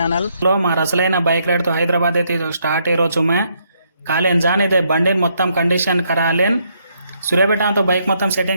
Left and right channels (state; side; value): inverted; both; correlation -0.74